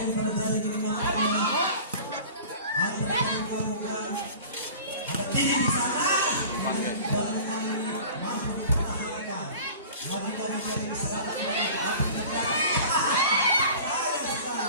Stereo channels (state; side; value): inverted; both; correlation -0.41